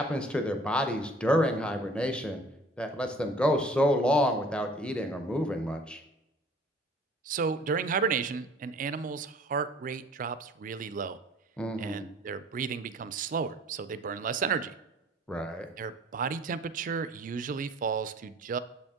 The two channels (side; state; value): both; normal; correlation 0.51